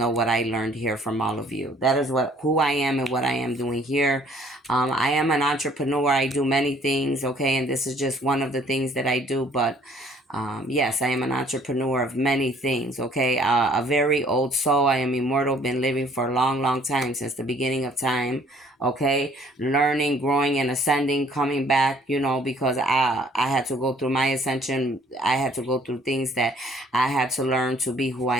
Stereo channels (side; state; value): both; normal; correlation 0.59